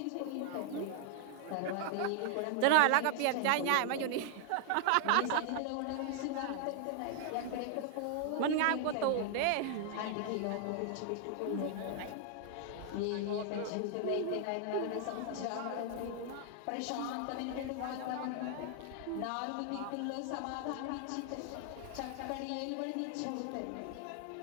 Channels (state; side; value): different; both; correlation 0.00